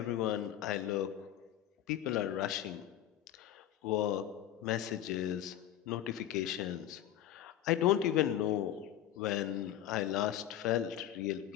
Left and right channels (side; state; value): right; quieter; 11.7 dB